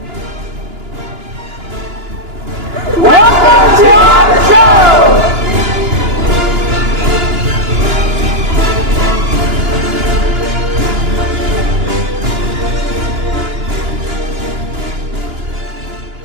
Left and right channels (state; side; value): late; left; 2.9 ms